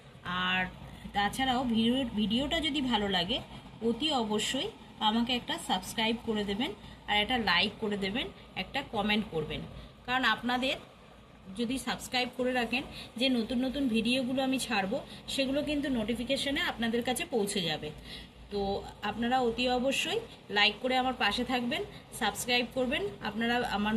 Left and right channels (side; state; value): both; identical; correlation 1.00